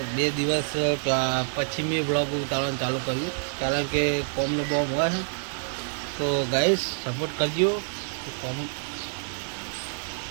2 દિવસ પછી મેં ब्लॉग ઉતારવાનું ચાલુ કર્યું કારણ કે કોમનો બોમ હોય છે। તો ગાઈસ સપોર્ટ કરજો। કોમ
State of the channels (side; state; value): left; silent; 60 dB below the other